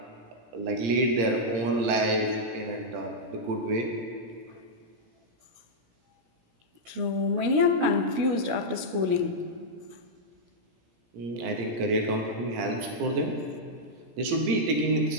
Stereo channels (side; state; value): left; late; 17 ms